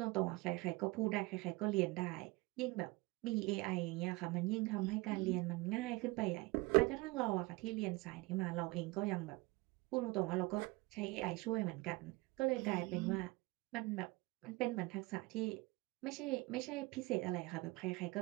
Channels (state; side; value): quieter; left; 23.4 dB